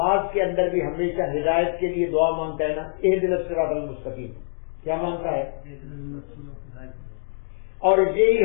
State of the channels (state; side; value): silent; right; digital silence